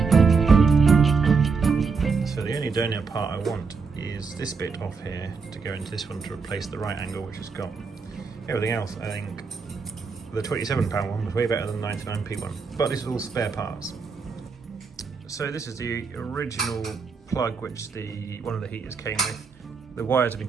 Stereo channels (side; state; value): left; quieter; 5.0 dB